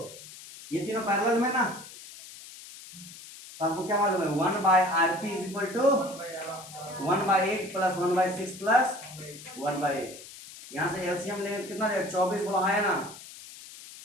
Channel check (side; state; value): left; noise; hiss, 16 dB below the sound